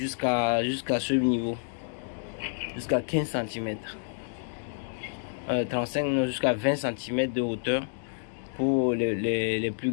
ce niveau. Jusqu'à 15 cm. 35, jusqu'à 20 cm de hauteur pour les plus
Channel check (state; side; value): silent; right; digital silence